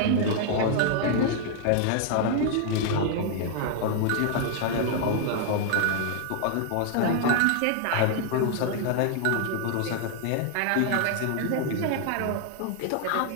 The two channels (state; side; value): different; both; correlation 0.00